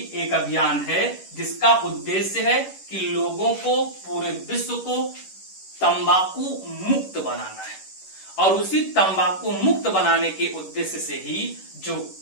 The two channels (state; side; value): late; right; 11 ms